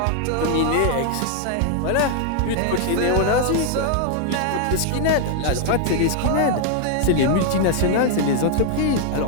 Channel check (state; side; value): different; both; correlation 0.00